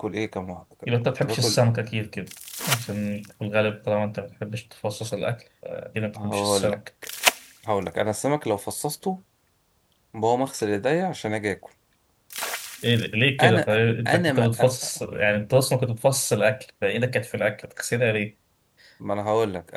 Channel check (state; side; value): identical; both; correlation 1.00